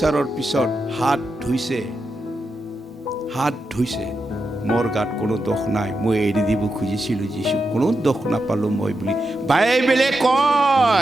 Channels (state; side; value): normal; both; correlation 0.87